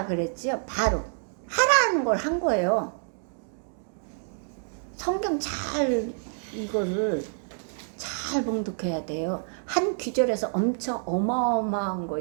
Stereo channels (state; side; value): silent; left; 60 dB below the other